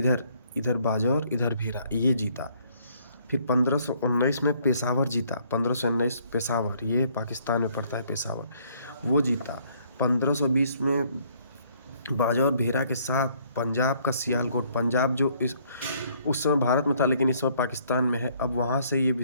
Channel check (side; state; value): both; inverted; correlation -0.65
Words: इधर बाजौर, इधर भेरा, ये जीता। फिर 1519 में पेशावर जीता, 1519 पेशावर, ये पाकिस्तान में पड़ता है पेशावर, वो जीता। 1520 में बाजौर भेरा के साथ पंजाब का सियालकोट, पंजाब जो उस समय भारत में था लेकिन इस समय पाकिस्तान में है, अब वहाँ से ये